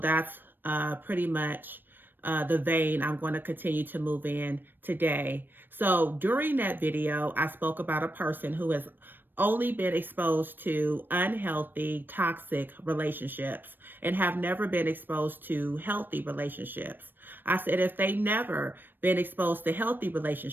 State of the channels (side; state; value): left; late; 0.094 ms